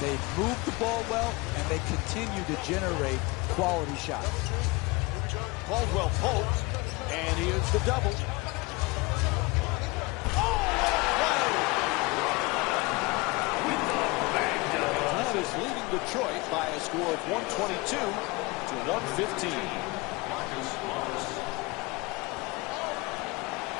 moved the ball well, and they continue to generate quality shots. Caldwell Pope, and here's the double. That is leading Detroit by a score of 122 to 115.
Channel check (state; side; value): quieter; right; 25.0 dB